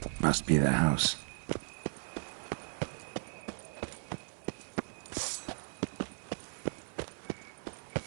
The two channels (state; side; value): silent; left; 53 dB below the other